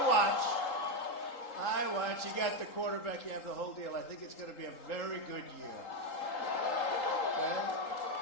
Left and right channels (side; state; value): right; late; 3.8 ms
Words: watch. You got the quarterback. You have the whole deal. I think it's going to be a very good year. Okay?